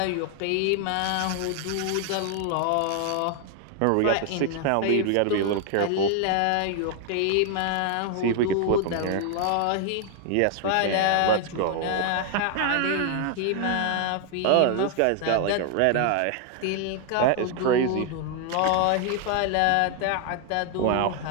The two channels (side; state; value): both; different; correlation 0.00